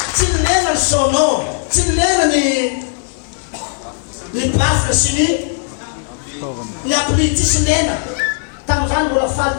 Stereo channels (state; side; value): silent; right; 60 dB below the other